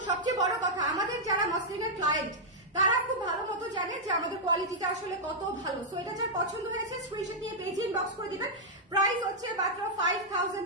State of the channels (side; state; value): both; normal; correlation -0.06